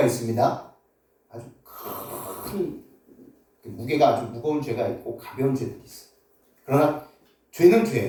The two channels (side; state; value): both; identical; correlation 1.00